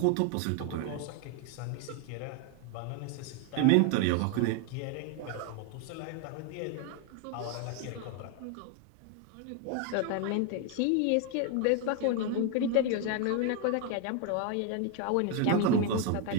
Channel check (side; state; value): both; different; correlation 0.01